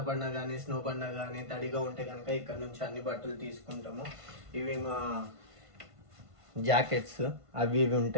పడినా కానీ స్నో పడినా కానీ తడిగా ఉంటే కనుక ఇక్కడ నుంచి అన్ని బట్టలు తీసుకుంటాము. ఇవి మా జాకెట్స్ అవి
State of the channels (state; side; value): late; left; 1.5 ms